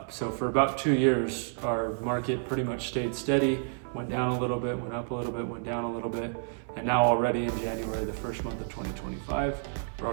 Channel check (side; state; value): left; silent; 58 dB below the other